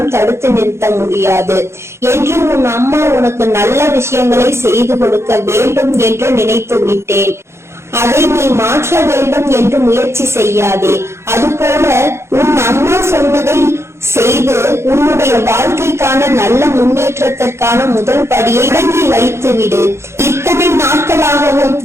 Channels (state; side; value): late; left; 0.13 ms